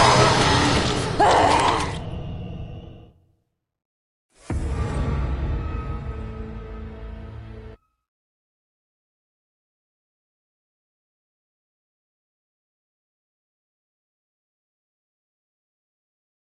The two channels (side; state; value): both; identical; correlation 1.00